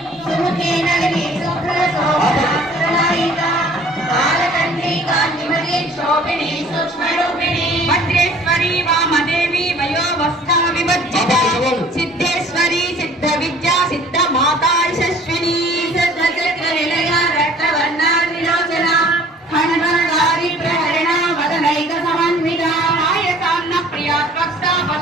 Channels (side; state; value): both; normal; correlation 0.52